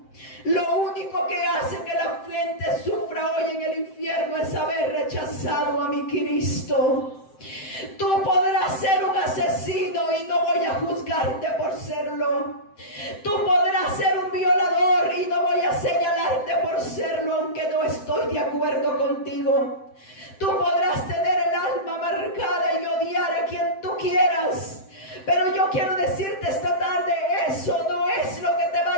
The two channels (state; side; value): late; right; 7.7 ms